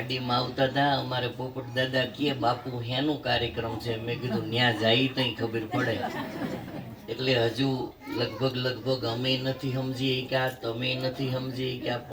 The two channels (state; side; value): identical; both; correlation 1.00